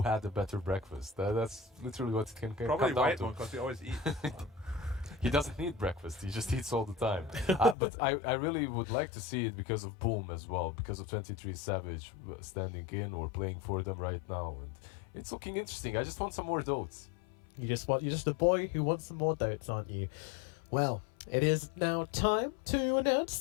had the better breakfast? That's literally what it can Probably come down white to. one, because we always eat. He doesn't need breakfast. He just eats all the time. But I really would like to see it because of Boom as well, because of 23 Savage standing in or playing for them right now, and it's looking interesting. I just want some more dotes. You're just a boy who wants some more dotes, aren't you? Well, it is now time to announce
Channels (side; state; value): right; drops out; at 7.8 s